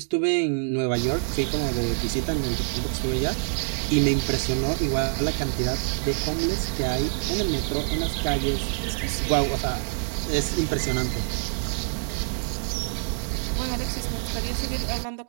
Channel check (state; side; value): silent; left; digital silence